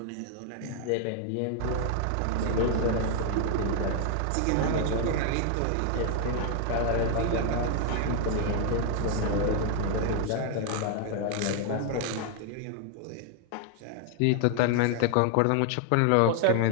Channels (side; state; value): both; different; correlation 0.00